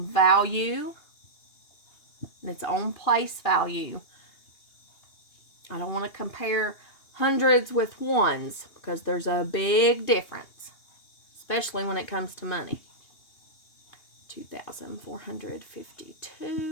value and its own place value. I don't want to compare hundreds with ones because there's a big difference, especially when it comes to money.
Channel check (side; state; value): right; late; 2.8 ms